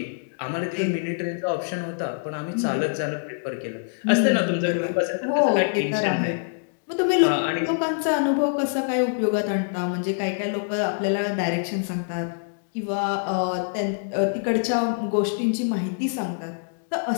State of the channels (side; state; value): right; silent; digital silence